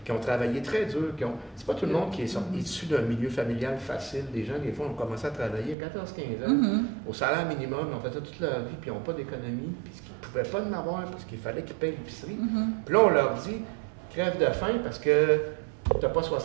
qui ont travaillé très dur, c'est pas tout le monde qui est issu d'un milieu familial facile. Des gens, des fois, ont commencé à travailler à 14-15 ans, au salaire minimum, ils ont fait ça toute leur vie, puis ils n'ont pas d'économie, puis ils ne pouvaient pas en avoir parce qu'il fallait qu'ils payent l'épicerie. Puis là, on leur dit, crève de faim parce que tu n'as pas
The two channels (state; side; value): drops out; left; at 5.8 s